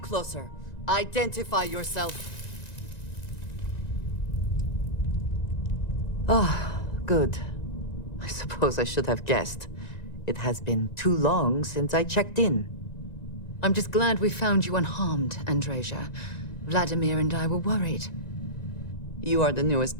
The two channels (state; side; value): late; right; 1.9 ms